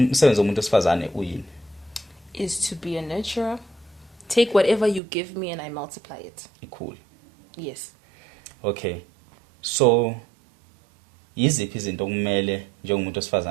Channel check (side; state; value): left; drops out; at 5.0 s